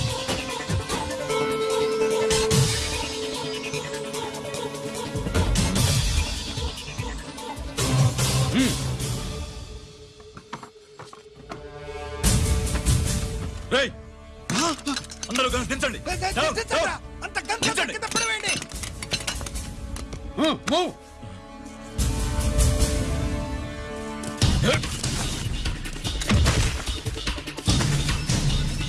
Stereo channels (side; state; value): both; identical; correlation 1.00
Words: రేయ్, అందరూ కలిసి దించండి. అంత గంట కింద పడవేయండి. మూవ్.